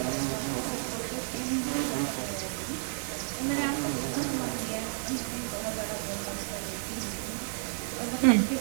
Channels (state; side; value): silent; left; 57 dB below the other